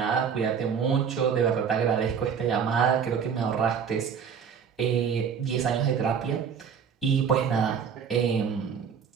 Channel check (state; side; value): quieter; left; 7.0 dB